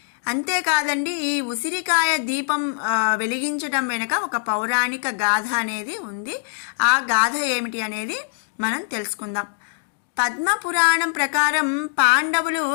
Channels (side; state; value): right; silent; 61 dB below the other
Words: అంతేకాదండి, ఈ ఉసిరికాయ దీపం వెలిగించడం వెనుక ఒక పౌరాణిక గాథ అనేది ఉంది. ఆ గాథ ఏమిటి అనేది మనం తెలుసుకుందాం. పద్మపురాణం ప్రకారం పాండవులు